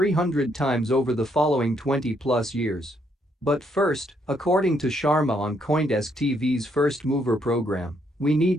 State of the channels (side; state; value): both; normal; correlation 0.73